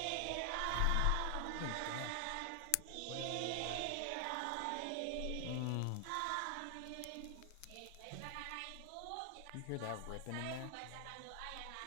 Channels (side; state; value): both; different; correlation 0.00